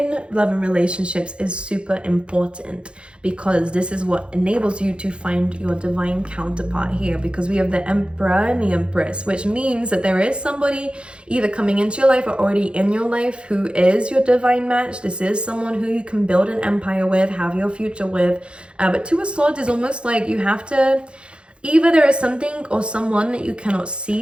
love and relationships is super important, because this is what enables you to find your divine counterpart here, because we have the Emperor and the Empress, which means that there is somebody either coming into your life or already in your life who is your divine match. This is someone who you can build an empire with, have your future with. But Two of Swords is almost like you have to, either there is something or someone that you cannot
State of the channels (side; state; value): left; late; 0.056 ms